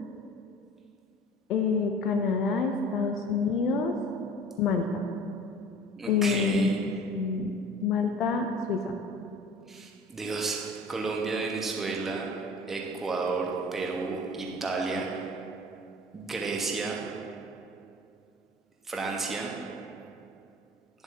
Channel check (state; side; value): normal; both; correlation 0.44